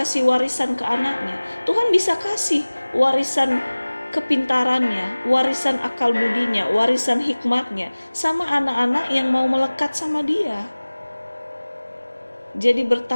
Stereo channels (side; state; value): both; inverted; correlation -1.00